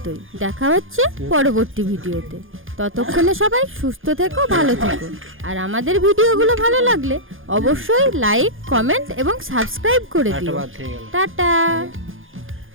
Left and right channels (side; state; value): left; late; 0.59 ms